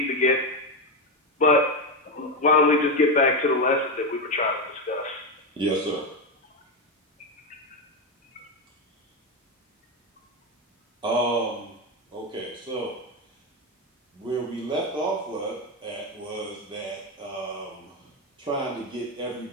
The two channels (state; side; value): normal; both; correlation 0.11